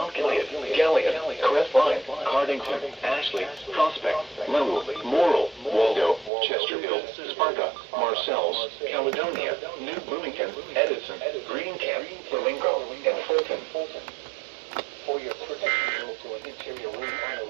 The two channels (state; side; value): drops out; left; at 6.3 s